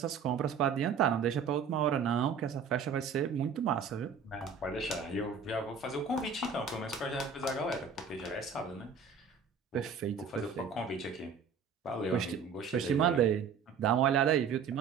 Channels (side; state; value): left; quieter; 6.1 dB